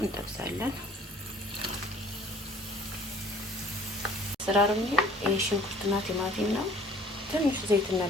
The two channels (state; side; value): normal; both; correlation 0.52